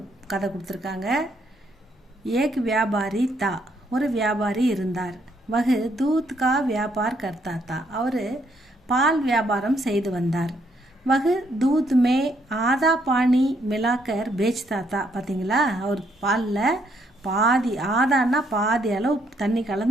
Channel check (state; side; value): normal; both; correlation 0.72